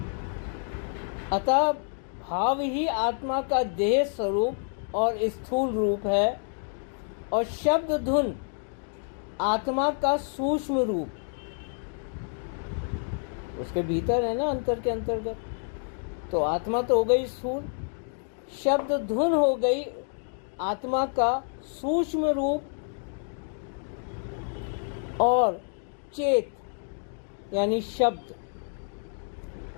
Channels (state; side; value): silent; right; 59 dB below the other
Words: अतः भाव ही आत्मा का देह स्वरूप और स्थूल रूप है, और शब्द धुन आत्मा का सूक्ष्म रूप। उसके भीतर है ना, अंतर के अंतर्गत। तो आत्मा तो हो गई स्थूल, शब्द धुन हो गई आत्मा का सूक्ष्म रूप और चेत यानी शब्द,